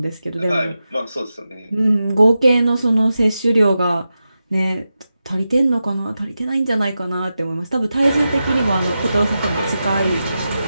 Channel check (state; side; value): inverted; both; correlation -0.91